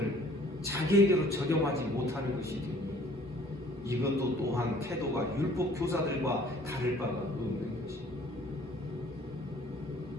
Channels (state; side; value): normal; both; correlation 0.55